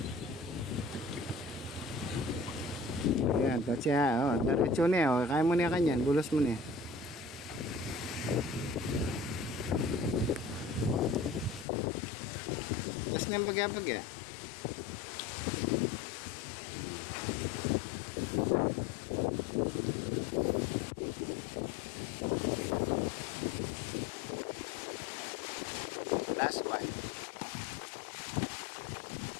yan, tatya, oh, diretso na, oh, kaya mo na kanyan, bulos mo na. Tapos na yung bagya-bagya. Last one.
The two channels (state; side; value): drops out; right; at 11.7 s